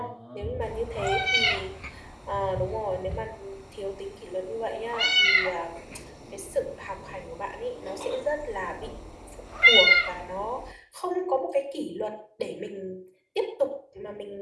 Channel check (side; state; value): both; identical; correlation 1.00